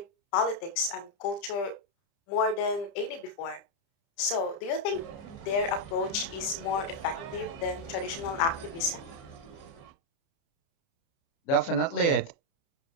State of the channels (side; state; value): right; late; 30 ms